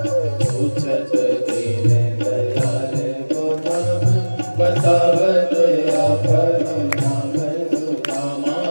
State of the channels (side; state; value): both; inverted; correlation -1.00